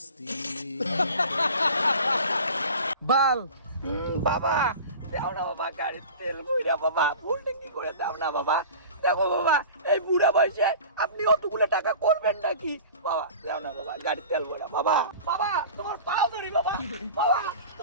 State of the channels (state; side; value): inverted; both; correlation -0.38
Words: বাল বাবা দাও না বাবা, গাড়ির তেল বইরা বাবা, ফুল ট্যাঙ্কি করে দাও না বাবা। দেখো বাবা, এই বুড়া বয়সে আপনি অতগুলো টাকা করবেন নাকি? বাবা দাও না বাবা, গাড়ির তেল ভরা বাবা। বাবা তোমার পা ধরি বাবা, বাবা